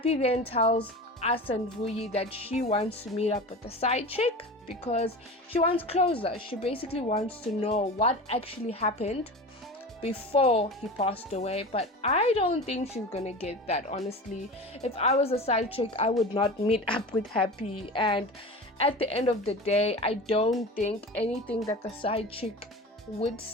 then tells us and Vuyi that she wants to meet up with the side chick because she wants closure. She basically wants to know what actually happened before he passed away. But I don't think she's gonna get that, honestly. If I was a side chick, I would not meet up with Happy. And at the end of the day, I don't think anything that the side chick would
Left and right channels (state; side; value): normal; both; correlation 0.32